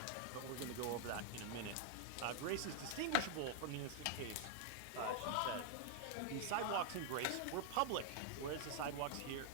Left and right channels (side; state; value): both; different; correlation 0.00